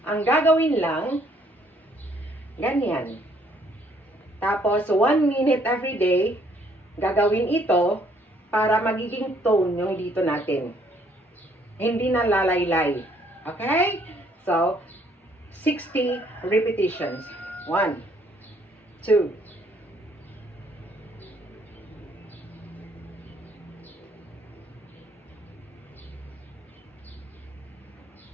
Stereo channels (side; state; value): both; normal; correlation 0.65